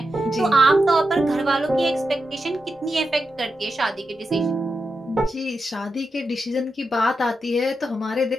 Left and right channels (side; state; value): both; normal; correlation 0.88